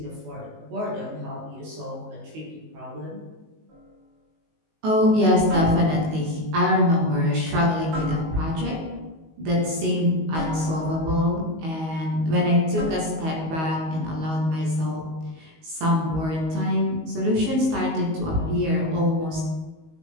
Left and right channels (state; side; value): late; left; 19 ms